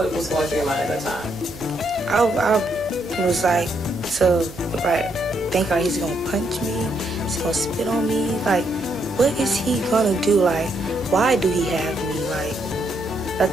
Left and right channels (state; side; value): noise; right; hum, 18 dB below the sound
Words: was going through your mind at that time? I was like, think like he's gonna punch me, he's gonna spit on me. Like, what is he gonna do? Like, why do he have me?